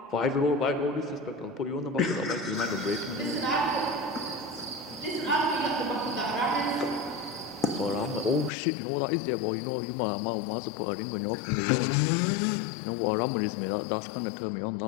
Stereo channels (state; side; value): drops out; right; at 8.5 s